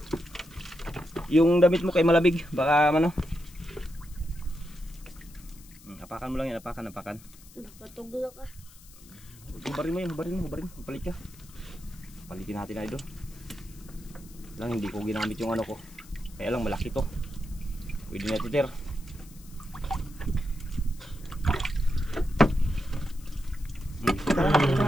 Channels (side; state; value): left; noise; hiss, 22 dB below the sound